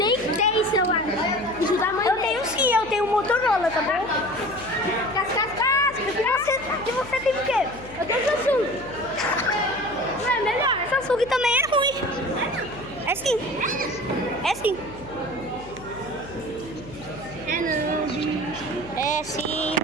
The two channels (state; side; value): noise; left; hum, 18 dB below the sound